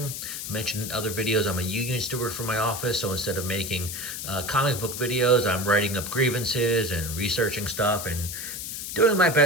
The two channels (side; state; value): left; noise; hiss, 6 dB below the sound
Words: Mentioned in other videos I'm a union steward for my office, so instead of making comic book videos, I'm writing up grievances and researching stuff and doing my